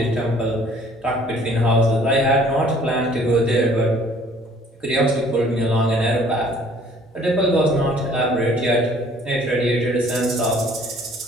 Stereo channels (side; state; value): both; normal; correlation 0.56